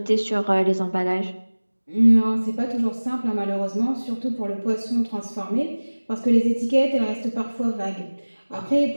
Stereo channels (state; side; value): inverted; both; correlation -1.00